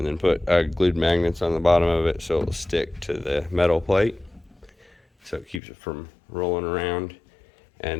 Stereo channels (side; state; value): right; drops out; at 5.6 s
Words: then put glued magnets on the bottom of it so it'll stick to the metal plate, so it keeps it from rolling around.